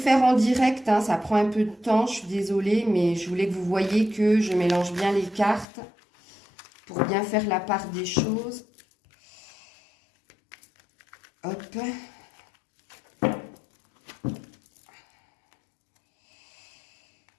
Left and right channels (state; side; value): drops out; right; at 5.7 s